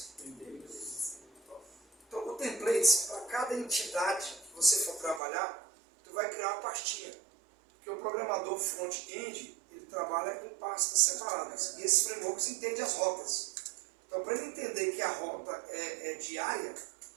Então, o templates, para cada entidade que você for trabalhar, tu vai criar uma pastinha. Porque o programador front-end, ele trabalha com pastas separadas. E esses frameworks entendem as rotas. Então, para ele entender que a rota é diária,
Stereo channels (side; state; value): left; drops out; at 5.2 s